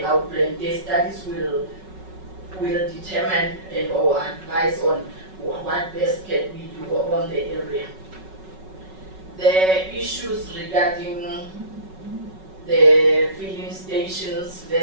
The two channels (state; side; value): late; left; 5.3 ms